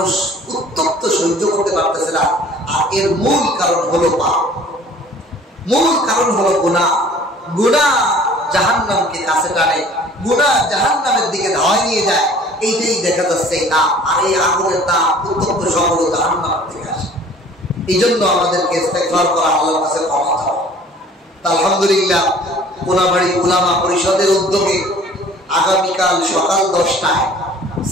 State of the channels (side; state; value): both; normal; correlation 0.50